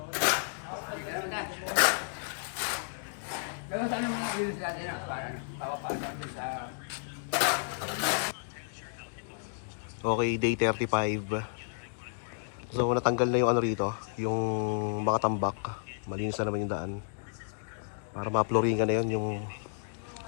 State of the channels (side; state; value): right; silent; digital silence